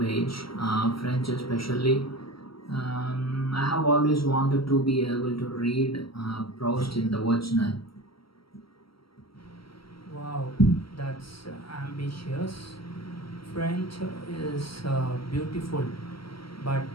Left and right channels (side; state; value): right; late; 0.75 ms